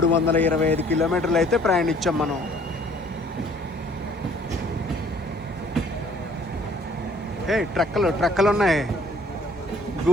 కిలోమీటర్లు అయితే ప్రయాణించాం మనం. ట్రక్కలు ఉన్నాయి,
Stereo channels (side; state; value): both; normal; correlation 0.58